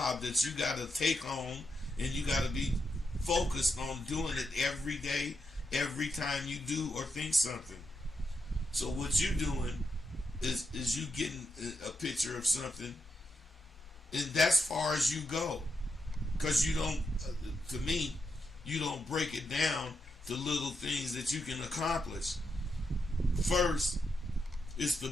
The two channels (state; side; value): normal; both; correlation 0.84